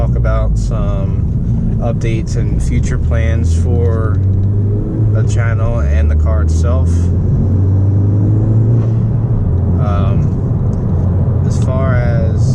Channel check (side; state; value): both; identical; correlation 1.00